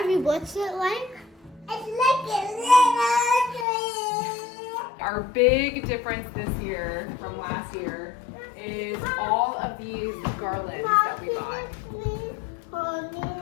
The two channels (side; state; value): right; drops out; at 3.7 s